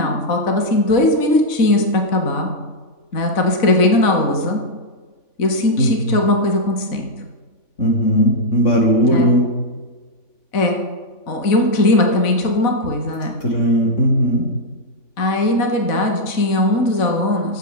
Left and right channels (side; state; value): right; late; 3.5 ms